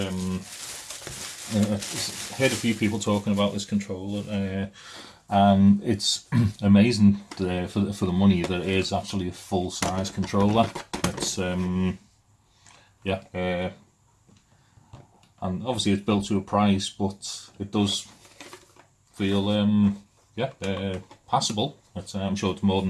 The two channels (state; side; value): identical; both; correlation 1.00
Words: I've heard a few people talking about this controller, and it's amazing for the money that it is actually a full size controller. It's yeah, and obviously it's built to a price, but it does feel yeah, passable. I'm sure it's more